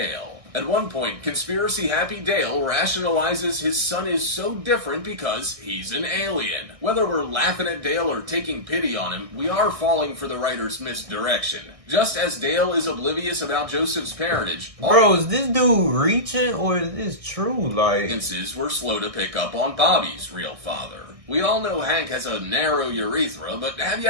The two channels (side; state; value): left; late; 1.6 ms